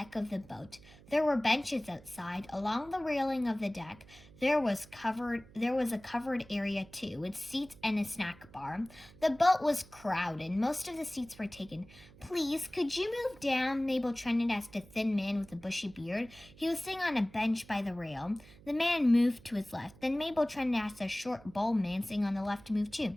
of the boat. There were benches outside. Along the railing of the deck, there was a covered area too, with seats and a snack bar. The boat was crowded. Most of the seats were taken. "Please, could you move down?" Mabel Trennett asked a thin man with a bushy beard. He was sitting on a bench by the rail. The man moved to his left. Then Mabel Trennett asked a short, bald man sitting on the left to move too.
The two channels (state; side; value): noise; right; hum, 22 dB below the sound